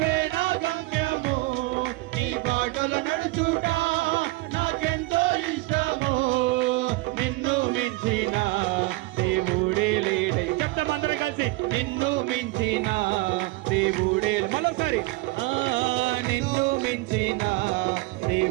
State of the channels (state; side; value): quieter; left; 21.7 dB